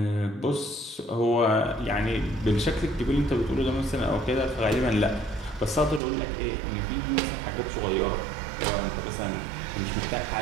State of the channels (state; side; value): drops out; left; at 6.0 s